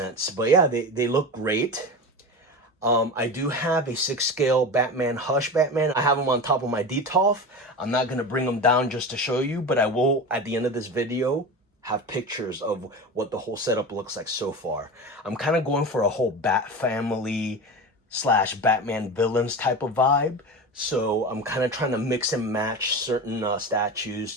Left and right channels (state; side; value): normal; both; correlation 0.27